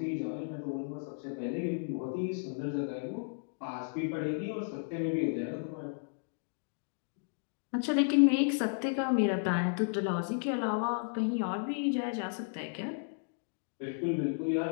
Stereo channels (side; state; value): right; silent; digital silence